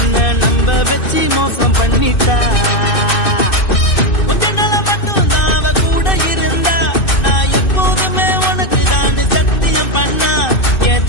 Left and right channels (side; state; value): right; late; 2.6 ms